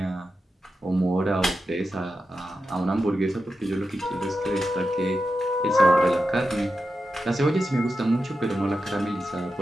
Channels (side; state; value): both; normal; correlation 0.90